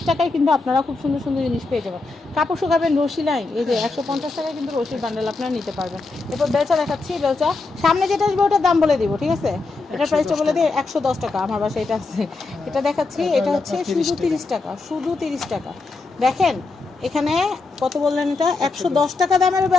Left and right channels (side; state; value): right; quieter; 3.7 dB